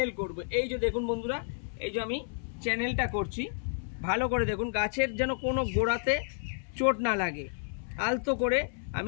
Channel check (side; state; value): right; silent; 57 dB below the other